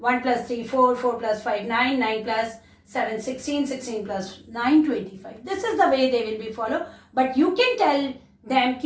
plus 3 4, 4 plus 5 9, 9 plus 7 16, 16 plus 9 25. This is the way they will be follow. But you can tell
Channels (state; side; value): identical; both; correlation 1.00